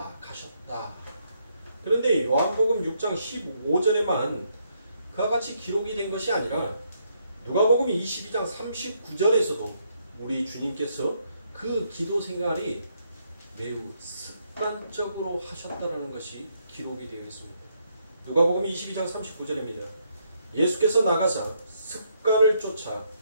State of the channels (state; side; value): inverted; both; correlation -0.75